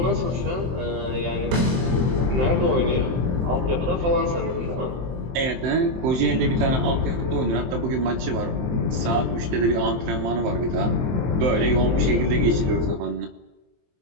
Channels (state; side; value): late; left; 23 ms